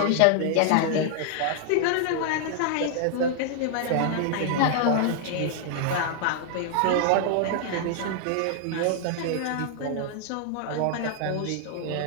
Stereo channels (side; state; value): both; different; correlation 0.00